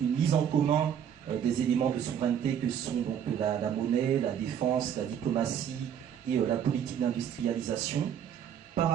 en commun des éléments de souveraineté que sont donc la monnaie, la défense, la diplomatie et la politique d'industrialisation. Par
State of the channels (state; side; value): quieter; left; 8.9 dB